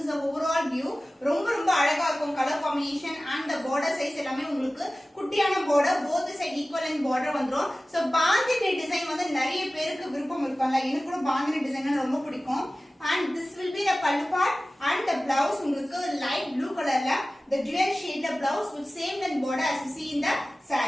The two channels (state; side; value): normal; both; correlation 0.97